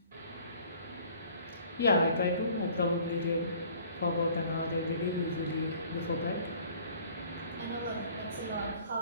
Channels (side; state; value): both; inverted; correlation -0.53